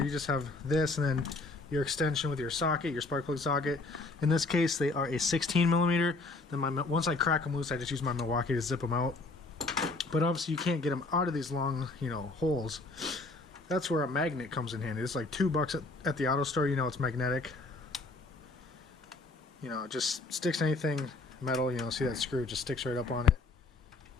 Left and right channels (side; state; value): right; quieter; 3.4 dB